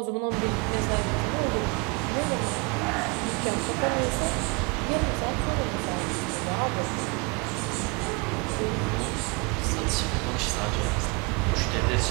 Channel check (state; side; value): quieter; left; 30.7 dB